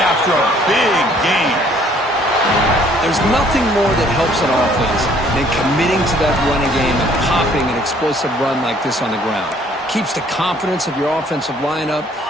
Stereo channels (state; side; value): normal; both; correlation 0.60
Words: after a big gain. There's nothing more that helps an offense than committing to that running game and popping an explosive run like this on the ground. Keeps the confidence of your offensive lineup.